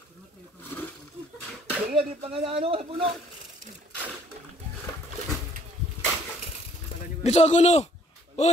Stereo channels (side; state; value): both; normal; correlation 0.60